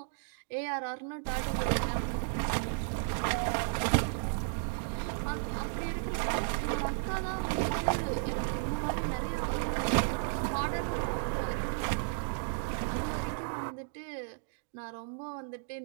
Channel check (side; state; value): left; silent; digital silence